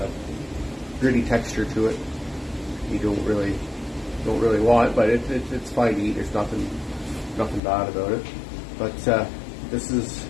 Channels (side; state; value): right; drops out; at 7.6 s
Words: texture to it. You don't really want, but it's fine to eat. There's nothing bad about it. But this is